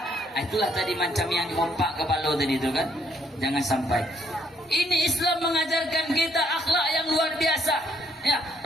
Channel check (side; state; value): both; normal; correlation 0.70